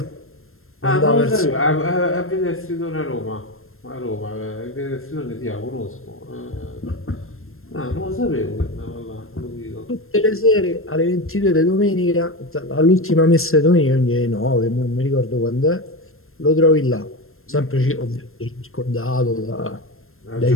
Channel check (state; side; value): late; right; 0.61 ms